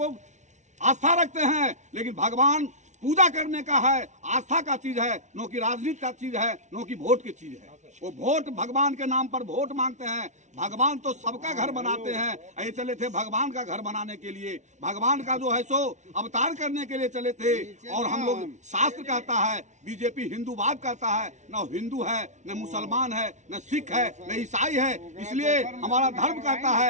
आस्था रखते हैं, लेकिन भगवान पूजा करने का है, आस्था का चीज है, नो की राजनीति का चीज है, नो की वोट की चीज है। वो वोट भगवान के नाम पर वोट मांगते हैं। भगवान तो सबका घर बनाते हैं। ये चले थे भगवान का घर बनाने के लिए, भगवान का जो है सो अवतार करने के लिए चले थे। और हम लोग, शास्त्र कहता है, बीजेपी हिंदूवाद कहता है, न हिंदू है, न मुसलमान है, न सिख है, न ईसाई है। इसलिए हमारा धर्म कहता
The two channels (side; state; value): left; late; 0.34 ms